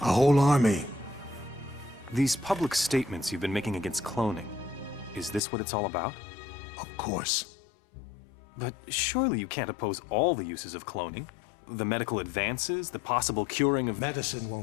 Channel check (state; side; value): drops out; right; at 5.4 s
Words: A whole army. These public statements you've been making against cloning, is this what it's all about? Of course. But surely you can't oppose all the uses of cloning. The medical advances, the possible curing of... Medicine